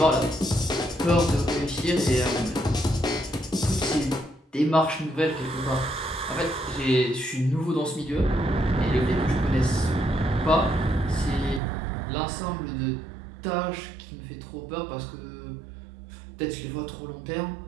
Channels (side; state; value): left; drops out; at 11.6 s